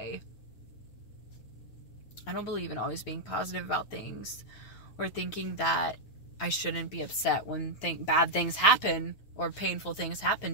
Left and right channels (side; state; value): right; late; 9.2 ms